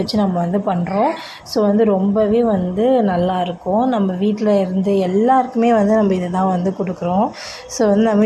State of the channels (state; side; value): identical; both; correlation 1.00